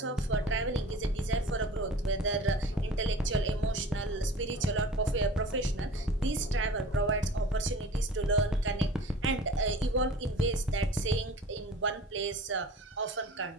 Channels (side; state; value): both; normal; correlation 0.42